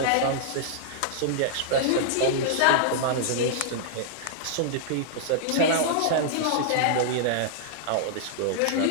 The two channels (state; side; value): different; both; correlation -0.01